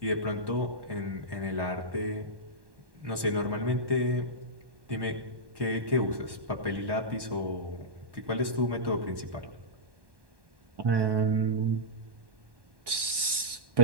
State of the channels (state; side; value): late; left; 1.1 ms